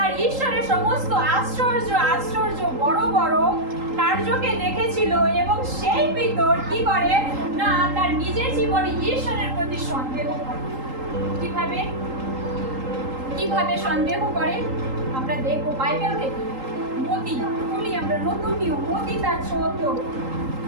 ঈশ্বরের সমস্ত আশ্চর্য বড় বড় কার্যকে দেখেছিল। এবং সেই পিতর কি করে না, তার নিজের জীবনে ঈশ্বরের প্রতি সন্দেহ করে। কিভাবে সন্দেহ করে আমরা দেখবো বাইবেল থেকে। মতি বলি আমরা নতুন নিয়ম, মতি তার 14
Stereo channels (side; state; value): left; late; 3.8 ms